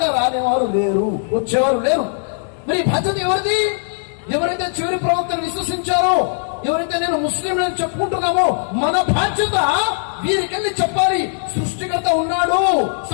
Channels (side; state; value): right; silent; digital silence